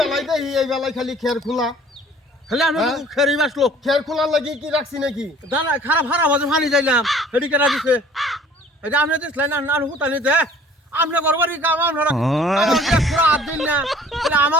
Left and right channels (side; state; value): both; normal; correlation 0.51